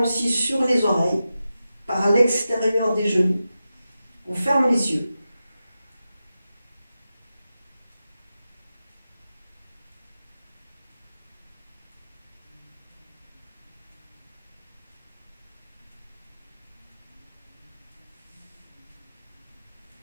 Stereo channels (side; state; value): both; inverted; correlation -0.91